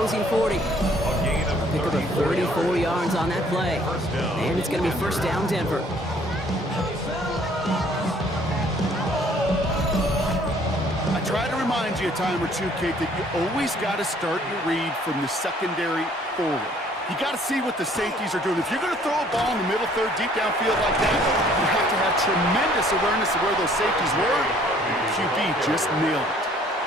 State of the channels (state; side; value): normal; both; correlation 0.59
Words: 40. Pick up a 34 yards on that play. And it's going to be first down Denver. I try to remind you a time or two, Kate, that you always got to start your read from the secondary forward. You got to see what the safeties are doing. If you're going to throw a ball in the middle third, deep downfield like that, you have to have tremendous awareness of where those safeties were. The QB just nailed it.